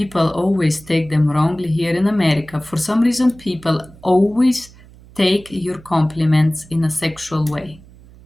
always take them wrongly here in America. For some reason, people always take your compliments in a sexual way.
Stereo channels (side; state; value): right; noise; hum, 23 dB below the sound